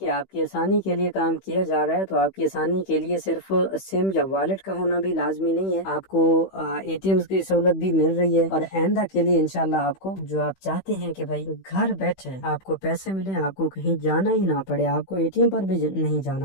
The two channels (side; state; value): right; late; 16 ms